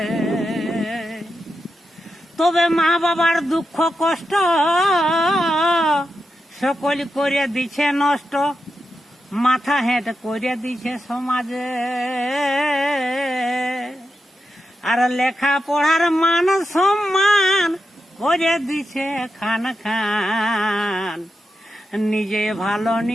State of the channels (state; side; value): normal; both; correlation 0.87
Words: তবে মা বাবার দুঃখ কষ্ট সকল করে দিছে নষ্ট, মাথা হেঁট করে দিছে সমাজে। আর লেখা পড়ার মান সম্মান করে দিছে খান খান, নিজে ভালো